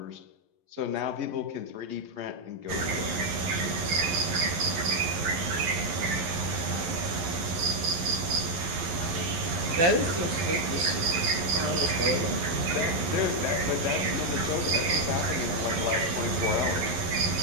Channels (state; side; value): late; left; 11 ms